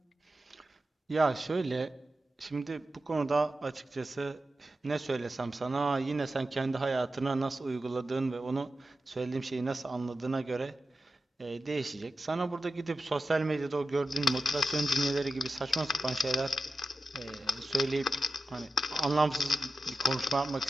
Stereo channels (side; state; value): both; normal; correlation 0.93